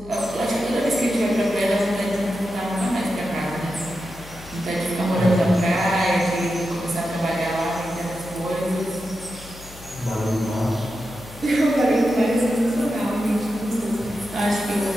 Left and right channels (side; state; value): left; noise; hum, 18 dB below the sound